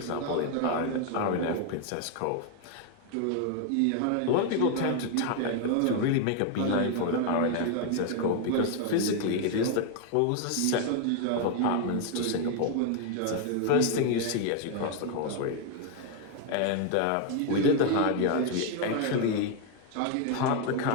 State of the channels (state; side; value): different; both; correlation 0.01